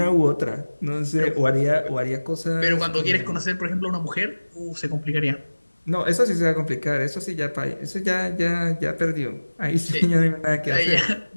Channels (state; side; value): inverted; both; correlation -1.00